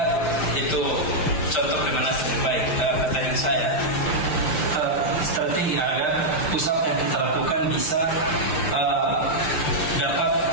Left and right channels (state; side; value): late; right; 6.6 ms